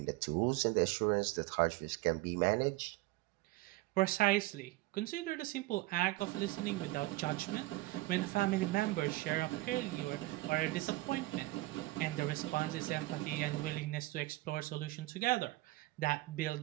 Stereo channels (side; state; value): left; quieter; 19.3 dB